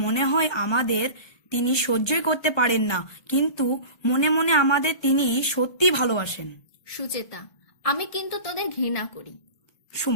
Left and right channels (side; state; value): right; late; 1.3 ms